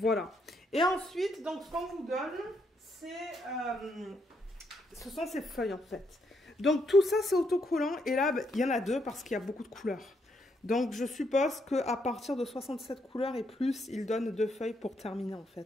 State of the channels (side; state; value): both; normal; correlation 0.76